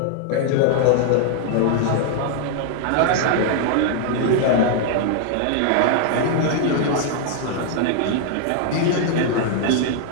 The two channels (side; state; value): both; different; correlation 0.00